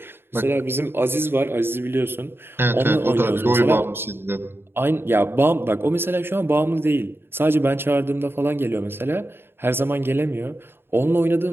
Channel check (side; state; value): left; late; 0.11 ms